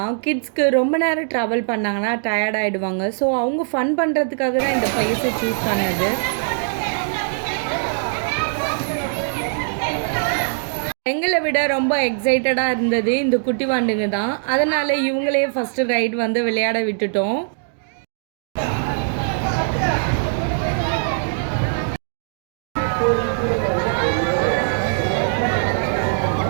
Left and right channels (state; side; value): silent; left; digital silence